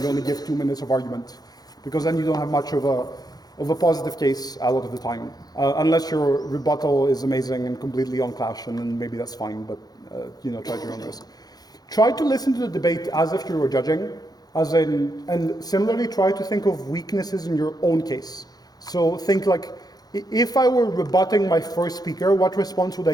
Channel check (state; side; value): late; right; 0.19 ms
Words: you only give 2 minutes of argument, because then you don't have much of a positive case a lot of the time. Unless your rebuttal is amazing and completely on clash, and then maybe that's fine, but you know, try at your own risk. Try to listen to the debate as if you were judging, and similarly try to think of weaknesses in your own case. So think like, if I were rebutting my first speaker, what response would